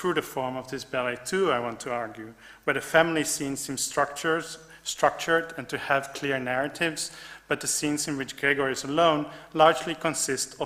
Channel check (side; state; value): both; identical; correlation 1.00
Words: the form of this ballet too, I want to argue, where the family scenes seem structured and to have clear narratives, but the scenes in which Gregor is alone largely consist